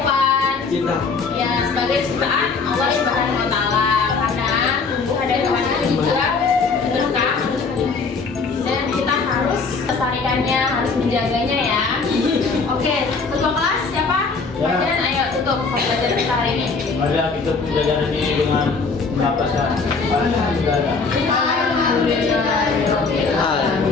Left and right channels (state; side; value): quieter; right; 4.6 dB